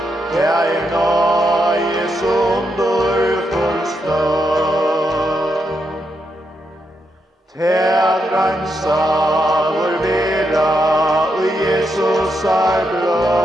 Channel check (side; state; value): both; normal; correlation 0.82